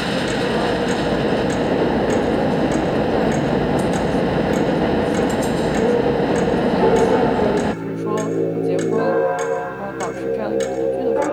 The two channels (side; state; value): both; identical; correlation 1.00